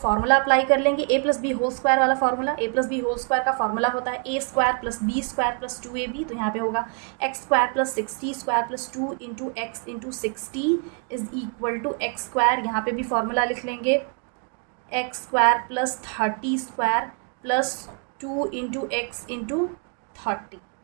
अप्लाई कर लेंगे, A plus B whole square वाला formula. A plus B whole square का फॉर्मूला होता है A square plus B square plus 2ab, तो यहाँ पे होगा X square plus 60 square plus 2 into X into 60 is equal to x square. यहाँ पे भी फॉर्मूला लिख लेंगे X square plus 30 square plus 2 into X into 30।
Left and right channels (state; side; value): quieter; left; 38.9 dB